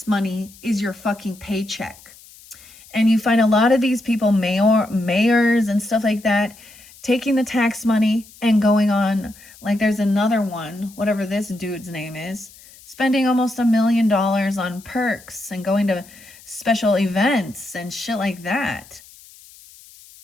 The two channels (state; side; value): noise; left; hiss, 23 dB below the sound